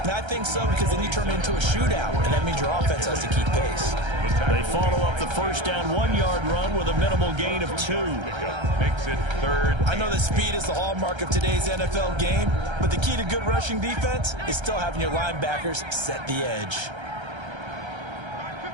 I think so, because then you turn it into a shootout, and that means your offense has to keep pace. They follow up the first down 1-yard run with a minimal gain of 2. Makes it third. I know that speed is the hallmark of today's NFL game, but the key to good rushing defense is still having your linebackers set the edge.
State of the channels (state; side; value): late; left; 1.3 ms